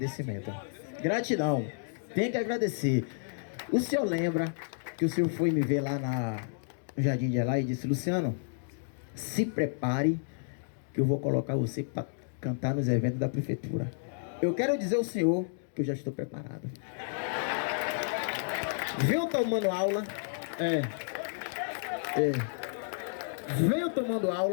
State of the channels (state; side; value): silent; right; digital silence